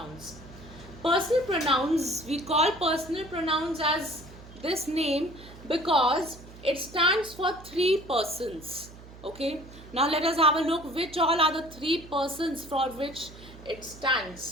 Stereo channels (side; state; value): right; noise; hum, 18 dB below the sound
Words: Personal pronouns, we call personal pronouns as this name because it stands for three persons. Okay, now let us have a look which all are the three persons for which it